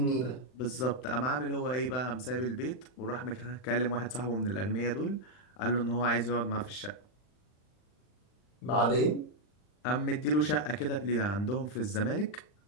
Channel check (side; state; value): right; late; 39 ms